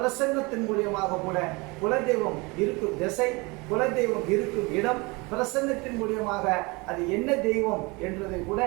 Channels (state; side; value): quieter; left; 26.4 dB